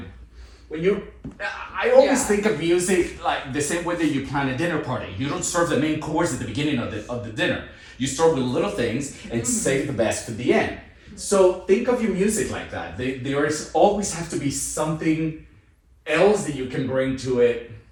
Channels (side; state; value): both; identical; correlation 1.00